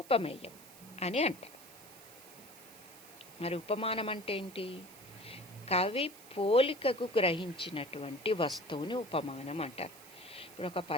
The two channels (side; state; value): right; noise; hiss, 19 dB below the sound